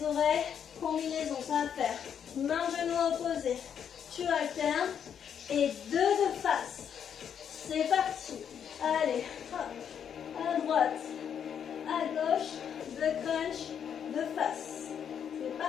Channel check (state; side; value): quieter; right; 8.2 dB